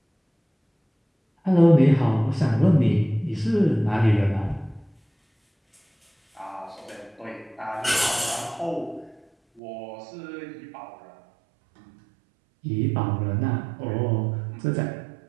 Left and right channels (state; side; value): drops out; left; at 9.6 s